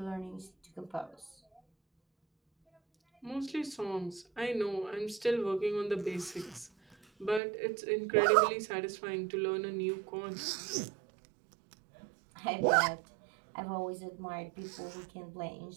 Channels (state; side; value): drops out; left; at 7.4 s